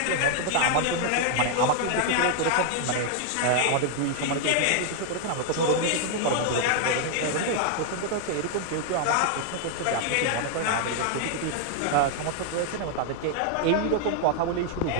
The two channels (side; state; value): both; different; correlation 0.00